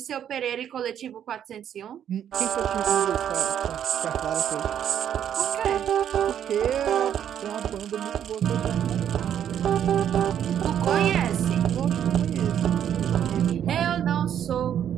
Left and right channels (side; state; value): left; quieter; 9.6 dB